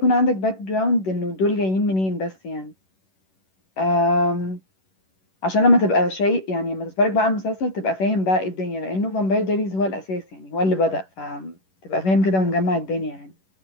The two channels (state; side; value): late; right; 11 ms